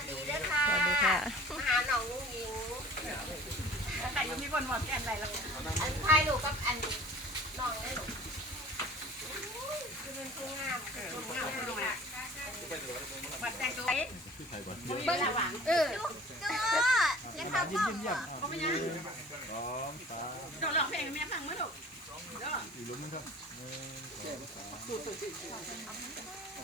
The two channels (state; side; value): normal; both; correlation 0.45